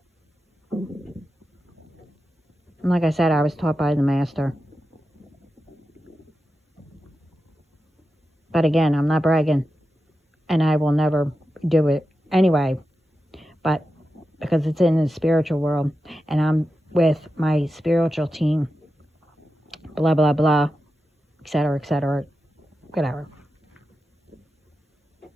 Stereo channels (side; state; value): both; normal; correlation 0.91